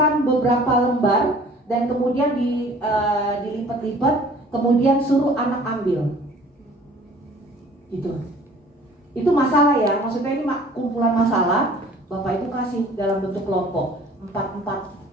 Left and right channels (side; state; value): both; normal; correlation 0.51